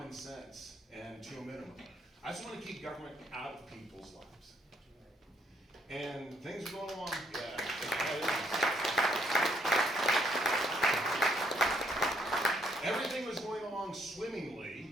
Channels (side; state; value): both; normal; correlation 0.71